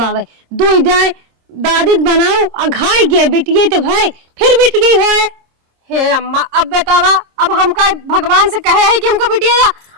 दो जाए दादी बनाओ अघाई गए बिटिये तो भाई फिर बिटिये हो। हे अम्मा अब बतावा, अब हमका भगवान से कहे है कि हमको बिटिया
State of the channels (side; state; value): left; late; 26 ms